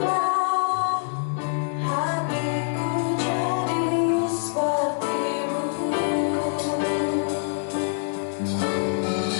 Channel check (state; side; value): silent; right; digital silence